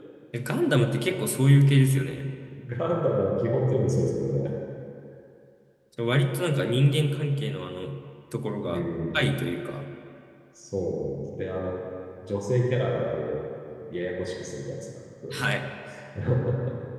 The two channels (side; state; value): both; identical; correlation 1.00